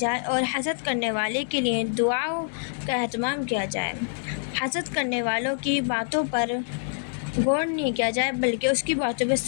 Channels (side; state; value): right; silent; digital silence